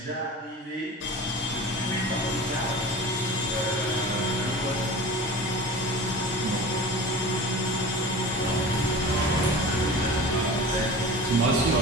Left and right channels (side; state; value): both; normal; correlation 0.35